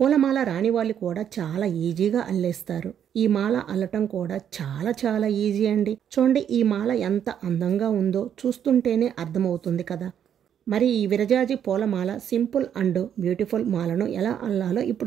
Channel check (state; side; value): quieter; left; 9.1 dB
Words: రాని వాళ్ళు కూడా చాలా ఈజీగా అల్లేస్తారు. ఈ మాల అల్లటం కూడా చాలా ఈజీ అండి. చూడండి, ఈ మాల ఎంత అందంగా ఉందో చూస్తుంటేనే అర్థమవుతుంది కదా. మరి ఈ విరజాజి పూలమాల సింపుల్ అండ్ బ్యూటిఫుల్ మాలను ఎలా అల్లాలో